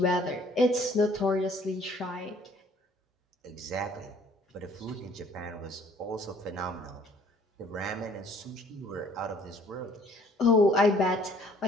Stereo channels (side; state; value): both; normal; correlation 0.57